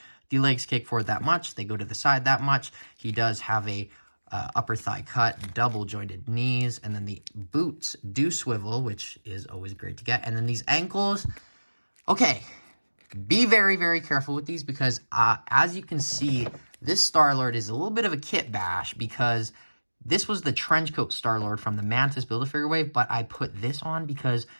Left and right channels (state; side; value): inverted; both; correlation -1.00